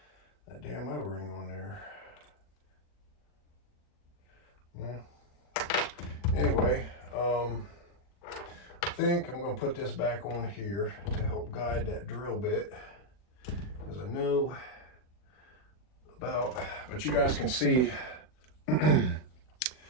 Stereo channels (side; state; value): right; late; 40 ms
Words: that damn O-ring on there. Well, anyway, I think I'm going to put this back on here to help guide that drill bit, because I know about, but you guys can see